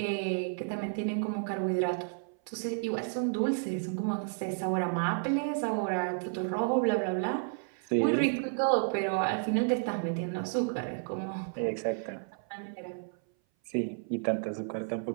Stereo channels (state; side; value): silent; left; 56 dB below the other